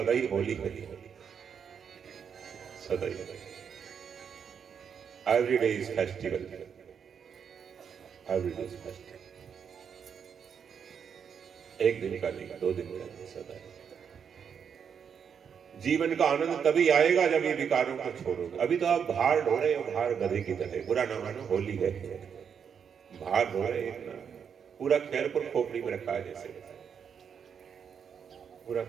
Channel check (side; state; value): left; quieter; 7.2 dB